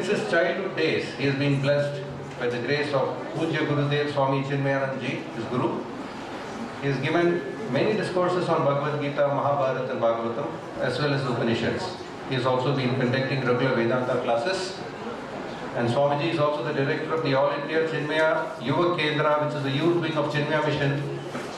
his childhood days, he has been blessed by the grace of Pujya Gurudev Swami Chinmayanand Ji, his Guru. He has given many discourses on Bhagavad Gita, Mahabharata and Bhagavatam, as well as Upanishads. He has also been conducting regular Vedanta classes. And Swamiji is also the director of the All India Chinmaya Yuva Kendra, which is the youth wing of Chinmaya Mission,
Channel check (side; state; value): both; identical; correlation 1.00